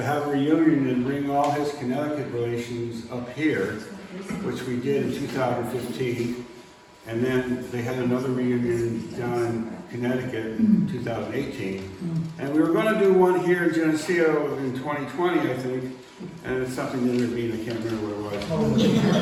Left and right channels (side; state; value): both; identical; correlation 1.00